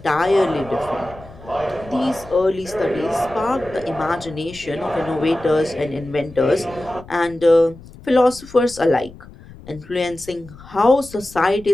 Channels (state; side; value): noise; left; rumble, 19 dB below the sound